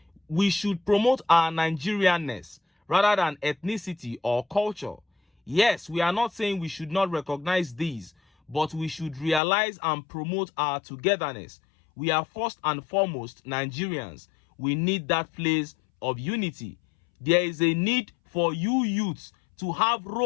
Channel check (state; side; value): drops out; right; at 9.4 s